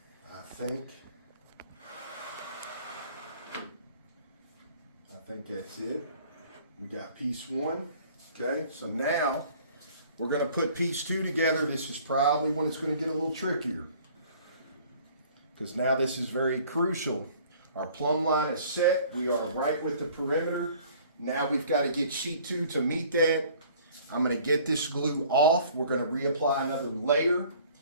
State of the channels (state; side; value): inverted; both; correlation -0.52